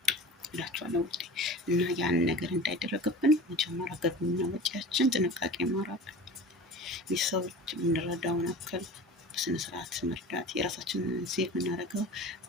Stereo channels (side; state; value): both; normal; correlation 0.36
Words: እላችኋለሁ ውዴ። እና ያን ነገር እንዳይደረግብን መጀመሪያ ገቢና ወጪያችን ጥንቃቄ ማድረግ፣ የሰዎች የምንረዳውን ያክል በስነ ስርዓት መርዳት፣ የራሳችንን ሴቭ የምናደርገው